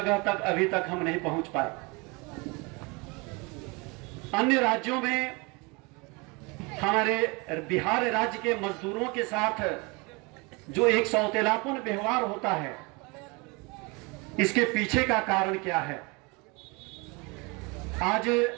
तक अभी तक हम नहीं पहुंच पाए। अन्य राज्यों में हमारे बिहार राज्य के मजदूरों के साथ जो एक सौतेलापन व्यवहार होता है, इसके पीछे का कारण क्या है? आज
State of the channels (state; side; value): quieter; left; 28.1 dB